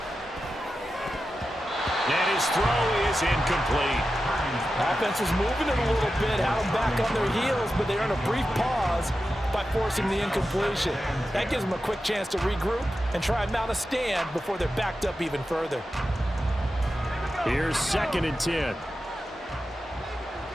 And his throw is incomplete. Offense was moving it a little bit, had them back on their heels, but they earned a brief pause by forcing the incompletion. That gives them a quick chance to regroup and try and mount a stand before they're backed up even further. Here's 2nd and 10.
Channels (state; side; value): normal; both; correlation 0.91